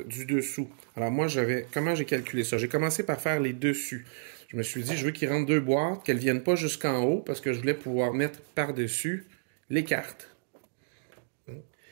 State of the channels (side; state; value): left; silent; digital silence